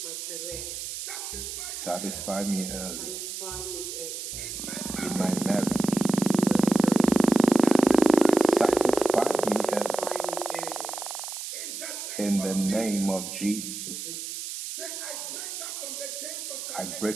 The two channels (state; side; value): noise; right; hiss, 7 dB below the sound